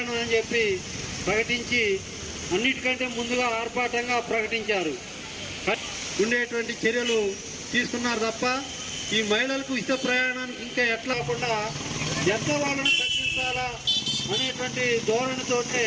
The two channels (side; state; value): both; identical; correlation 1.00